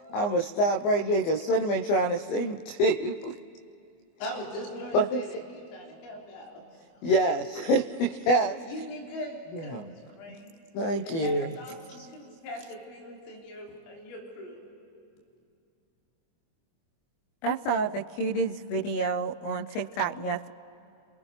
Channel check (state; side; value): late; right; 24 ms